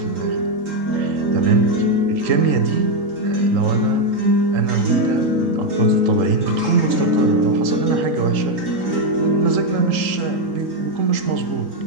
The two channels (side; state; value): left; late; 3.8 ms